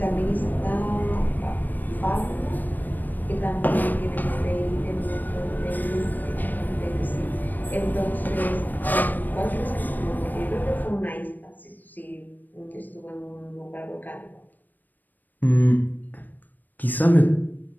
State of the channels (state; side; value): late; right; 0.088 ms